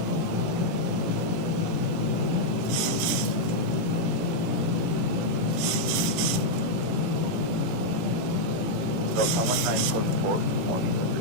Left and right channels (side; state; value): left; late; 18 ms